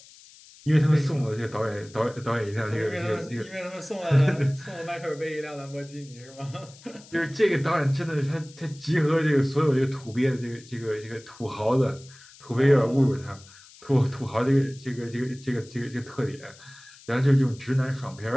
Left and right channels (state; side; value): noise; left; hiss, 22 dB below the sound